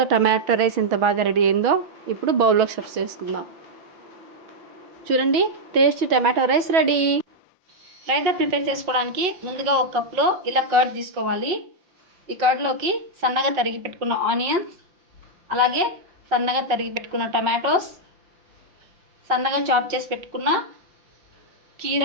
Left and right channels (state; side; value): late; left; 5.8 ms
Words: టమాటో రైస్ ఎంత బాగా రెడీ అయిందో. ఇప్పుడు బౌల్లోకి సర్వ్ చేసుకుందాం. చూడండి tasty tomato rice ready. Raita prepare చేసుకోవడానికి ముందుగా ఒక కప్లో ఇలా కర్డ్ తీసుకోవాలి. ఈ కర్డ్లోకి సన్నగా తరిగి పెట్టుకున్న ఆనియన్స్, అలాగే సన్నగా తరిగి పెట్టుకున్న టమాటోస్, సన్నగా చాప్ చేసి పెట్టుకున్న